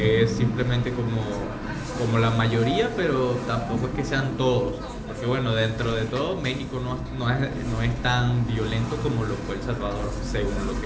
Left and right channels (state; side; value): identical; both; correlation 1.00